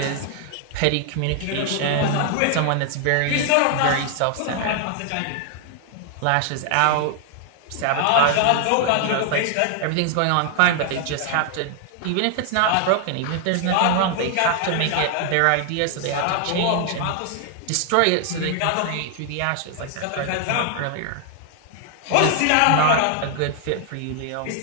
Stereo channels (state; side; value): different; both; correlation 0.00